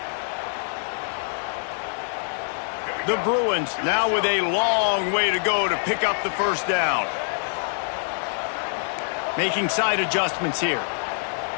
The Bruins now with a long way to go to pick up the first down. Making side adjustments here.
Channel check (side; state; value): right; silent; 61 dB below the other